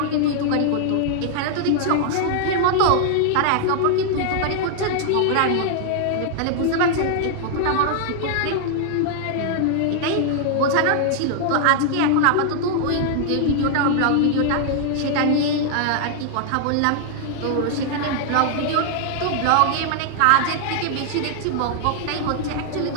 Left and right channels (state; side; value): different; both; correlation -0.01